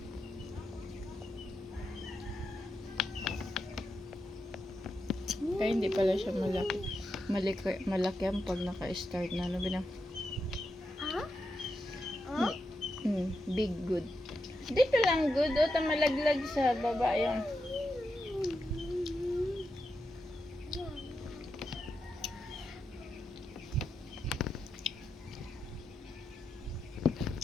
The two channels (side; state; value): both; normal; correlation 0.86